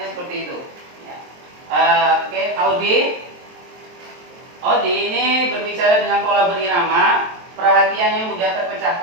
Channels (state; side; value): late; left; 23 ms